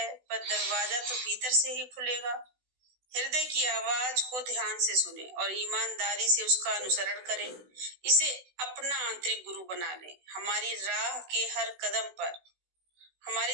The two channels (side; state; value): left; late; 16 ms